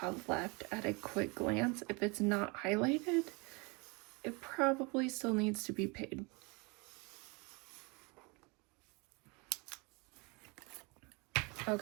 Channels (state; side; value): quieter; left; 29.1 dB